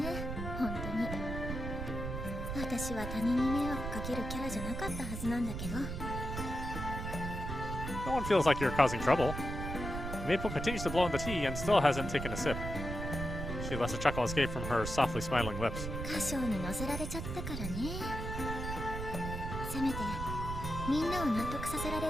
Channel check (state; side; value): noise; right; rumble, 5 dB below the sound